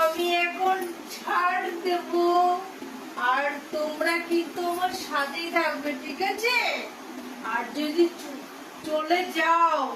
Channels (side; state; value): both; identical; correlation 1.00